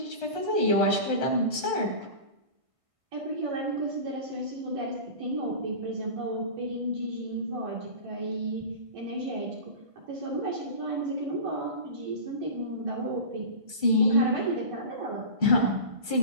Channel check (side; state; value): left; late; 1.5 ms